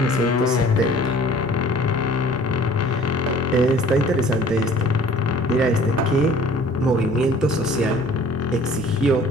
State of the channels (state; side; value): normal; both; correlation 0.51